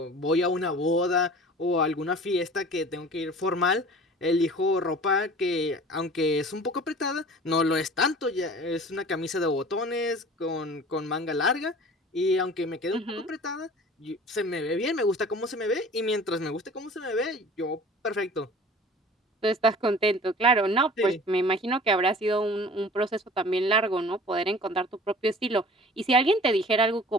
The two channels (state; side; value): normal; both; correlation 0.44